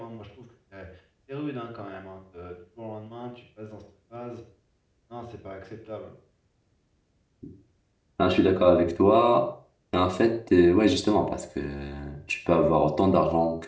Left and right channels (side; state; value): both; identical; correlation 1.00